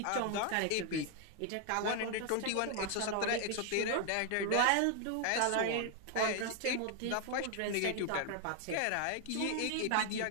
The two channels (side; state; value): both; different; correlation 0.00